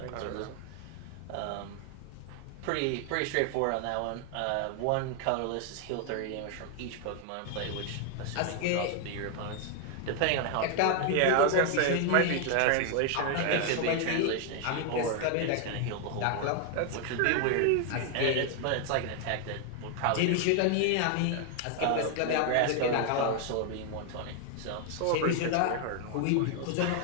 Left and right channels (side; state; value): both; different; correlation 0.00